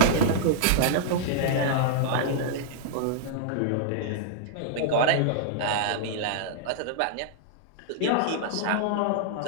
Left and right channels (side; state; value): both; different; correlation -0.02